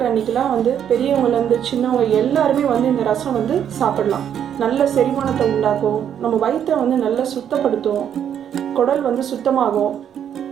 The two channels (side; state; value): left; quieter; 9.2 dB